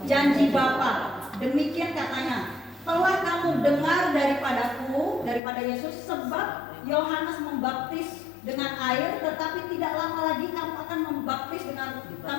Janji Bapa. Demikian katanya, telah kamu dengar daripada Yesus, sebab Yohanes membaptis dengan air, tetapi tidak lama lagi kamu akan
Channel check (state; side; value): drops out; right; at 5.4 s